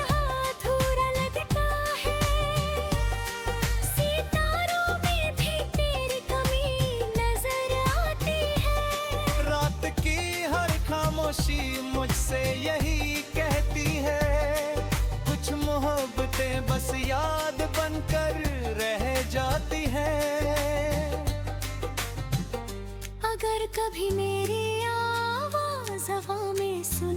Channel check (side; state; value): both; identical; correlation 1.00